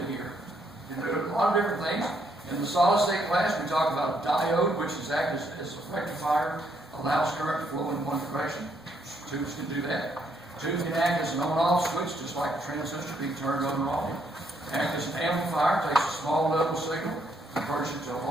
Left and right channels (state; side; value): normal; both; correlation 0.73